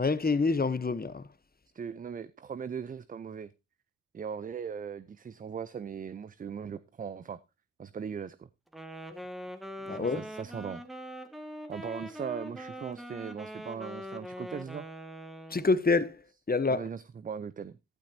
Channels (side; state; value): both; normal; correlation 0.49